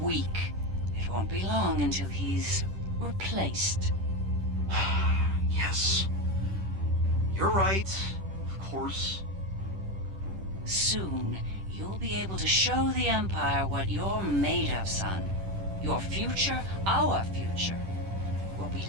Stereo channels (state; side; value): late; left; 10 ms